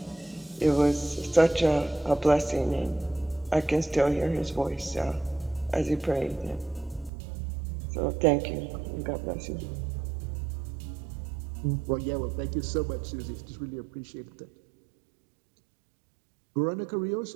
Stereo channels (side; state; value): left; drops out; at 7.1 s